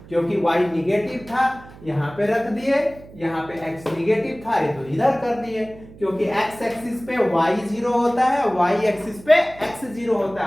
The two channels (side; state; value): right; noise; hum, 20 dB below the sound